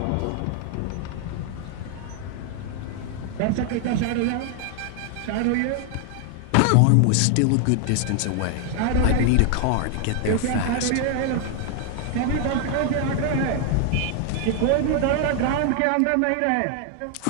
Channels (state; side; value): different; both; correlation 0.00